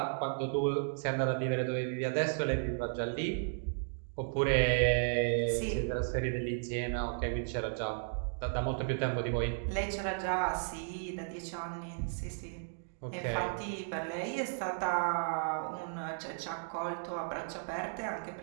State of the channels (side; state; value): left; silent; digital silence